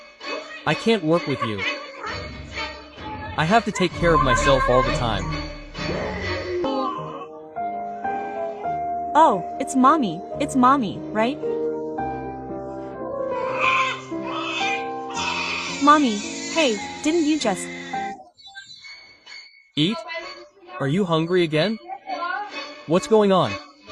I can't work with you. I have to take care of myself all the time. Oh, it's mommy. It's mommy, right? Mommy, hey, didn't you just... Eat? Are you hungry again? What's going on?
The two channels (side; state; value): both; identical; correlation 1.00